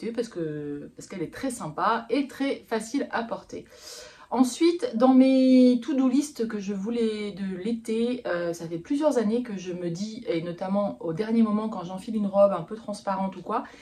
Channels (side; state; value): both; identical; correlation 1.00